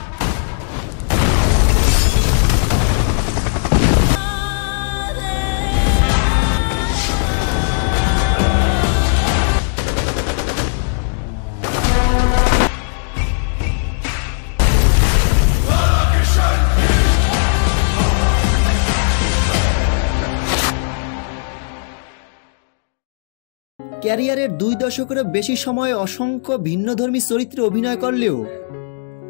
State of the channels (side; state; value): right; silent; digital silence